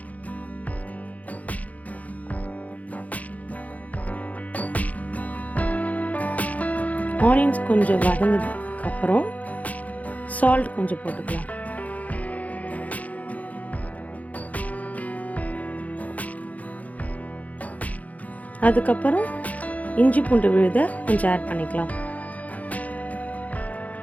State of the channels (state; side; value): late; right; 0.072 ms